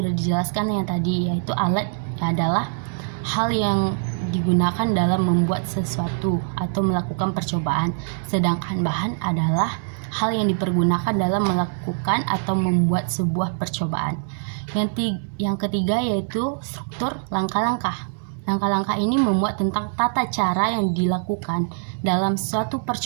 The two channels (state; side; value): silent; left; digital silence